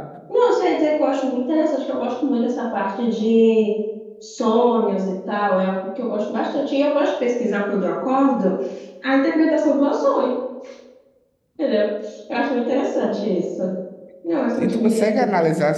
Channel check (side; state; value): both; identical; correlation 1.00